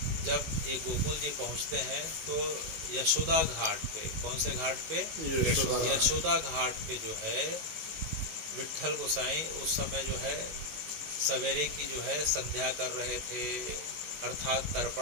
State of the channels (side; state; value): left; late; 19 ms